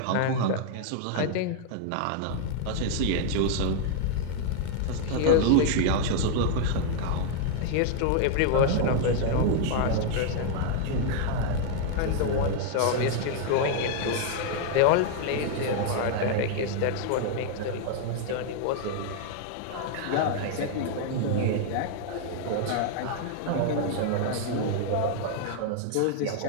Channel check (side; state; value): both; different; correlation -0.01